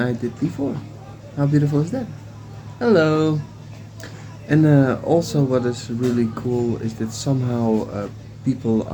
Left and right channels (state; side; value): identical; both; correlation 1.00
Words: did before. How beautiful is that? Hello. And also what is really cool is that somehow people